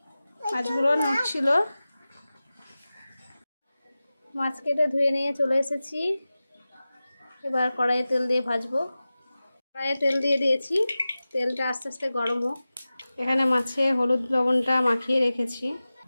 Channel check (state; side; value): inverted; both; correlation -0.96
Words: মাছগুলো নড়ছিল। মাছ কেটে ধুয়ে নিয়ে চলে এসেছি। এবার কড়াইয়ে তেল দিয়ে ভাজবো। কড়াইয়ে তেল দিয়ে দিয়েছি, তেলটা আস্তে আস্তে গরম হোক। এখানে মাছে হলুদ লবণটা মাখিয়ে রেখেছি।